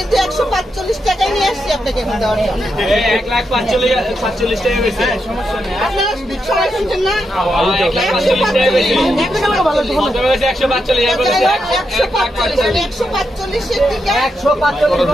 145 টাকায় নিয়ে আসছি আপনাকে এখন দেওয়ার জন্য। 1,45,000 টাকা বেশি সমস্যা নেই। আপনারা সবাই শুনছেন না?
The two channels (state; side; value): normal; both; correlation 0.84